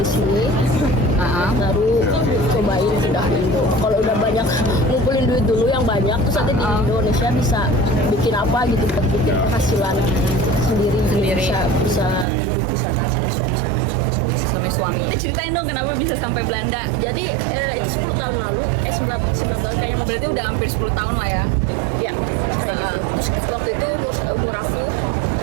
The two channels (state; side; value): drops out; left; at 12.2 s